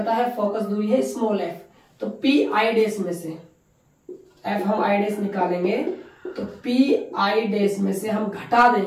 है, फोकस दूरी है स्मॉल f। तो PI डैश में से F हम I डैश निकालेंगे, तो PI डैश में से हम घटा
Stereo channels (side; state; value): both; identical; correlation 1.00